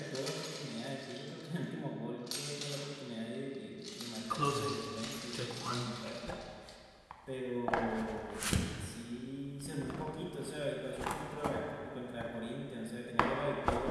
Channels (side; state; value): both; identical; correlation 1.00